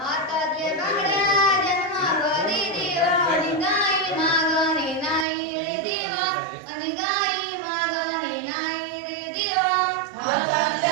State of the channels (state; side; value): drops out; left; at 5.2 s